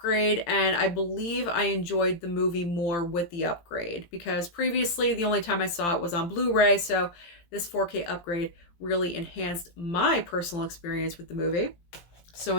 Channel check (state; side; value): late; right; 17 ms